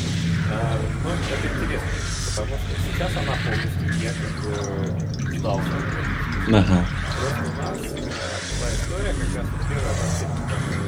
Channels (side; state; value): both; identical; correlation 1.00